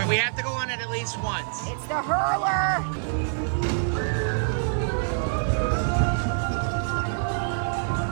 we have to go on it at least once. It's the hurler.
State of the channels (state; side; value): silent; left; 61 dB below the other